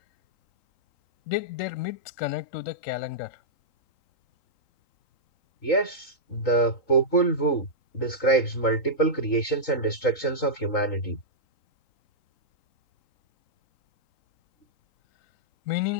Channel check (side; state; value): right; late; 3.8 ms